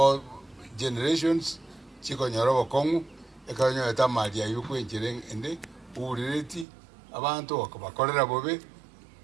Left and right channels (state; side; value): drops out; left; at 6.7 s